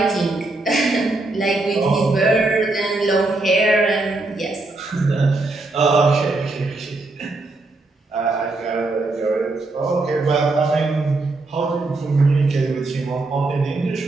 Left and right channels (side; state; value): left; quieter; 3.1 dB